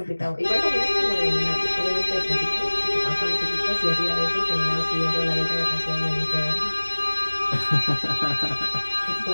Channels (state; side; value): inverted; both; correlation -1.00